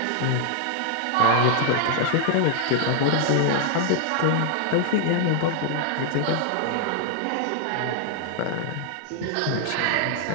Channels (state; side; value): different; both; correlation -0.01